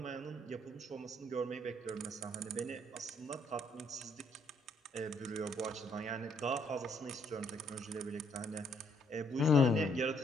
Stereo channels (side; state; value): both; normal; correlation 0.69